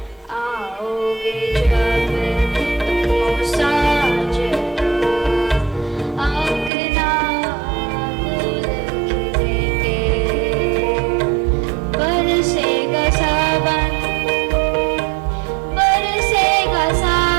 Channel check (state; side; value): drops out; left; at 6.7 s